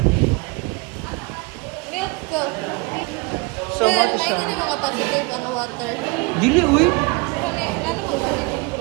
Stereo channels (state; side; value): quieter; left; 26.6 dB